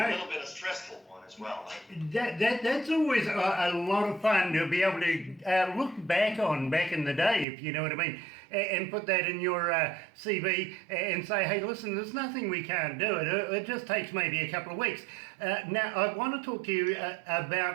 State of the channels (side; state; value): left; drops out; at 7.5 s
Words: a little bit of stressful one as well. That's always a lot of fun to be able to look back on back in the day, if you know what I mean, and put that in your CV and say, hey, listen, there's nothing we can't do. It just takes maybe a couple of weeks. Now, I want to talk to you